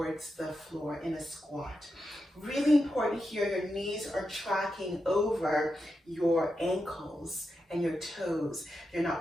the floor in a squat. Really important here, your knees are tracking over your ankles and your toes. They're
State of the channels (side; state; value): both; normal; correlation 0.88